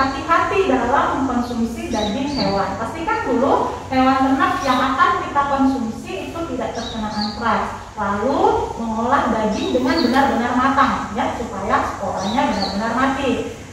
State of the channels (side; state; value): both; identical; correlation 1.00